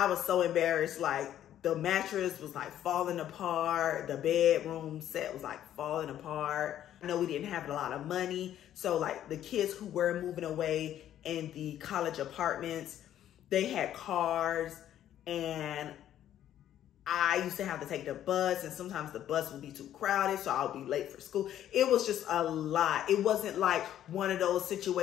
was so embarrassed. Like the mattress was like falling apart. The bedroom set was like falling apart. I know we didn't have a lot of money. So like the kids who were moving away in the college apartments, they had cars, and I used to have to take the bus, and sometimes the bus would be too crowded, so I would be late for school. It was just a lot. It wasn't like one of those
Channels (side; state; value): right; quieter; 11.4 dB